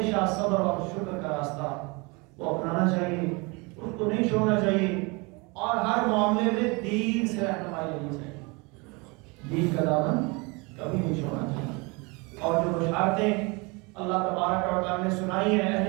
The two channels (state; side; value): quieter; left; 28.0 dB